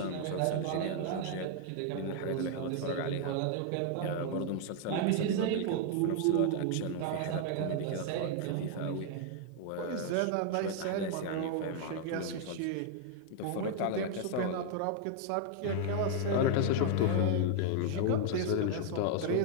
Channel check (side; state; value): both; different; correlation 0.00